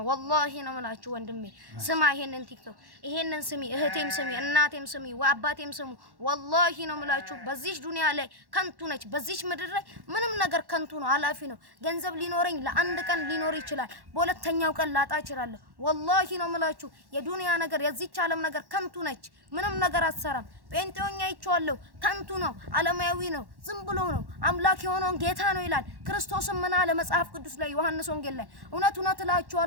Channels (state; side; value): late; left; 1.1 ms